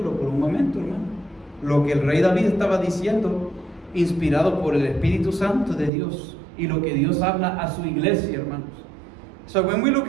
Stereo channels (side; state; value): left; drops out; at 5.9 s